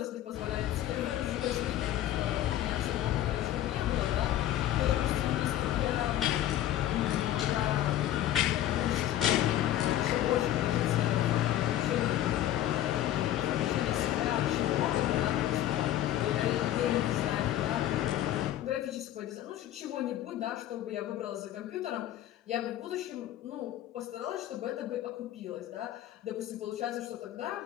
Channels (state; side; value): quieter; right; 12.7 dB